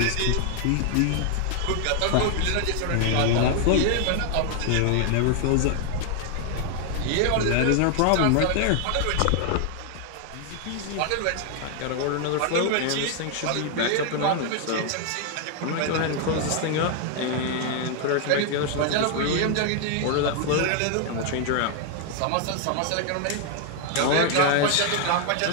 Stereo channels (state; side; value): different; both; correlation 0.00